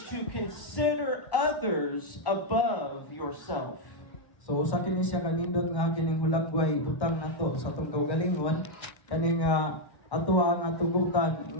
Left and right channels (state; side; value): late; right; 1.1 ms